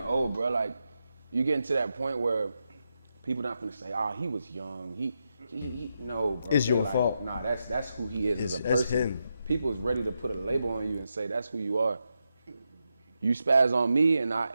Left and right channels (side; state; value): both; inverted; correlation -0.86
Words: bro. Like, you getting to that point where people not gonna say, he was young. He no, bro. It's your like, fault. Nah, that's who he is as a That's person. him. People is ready to put a label on you and say that's who you are. You spaz on me,